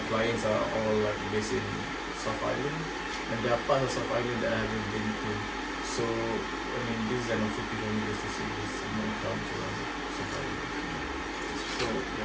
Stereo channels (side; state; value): both; identical; correlation 1.00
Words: clients are all like based in South Island, and there are parts of South Island that I haven't been to. So, I mean, this is an opportunity for me just to see this new culture around South Island. So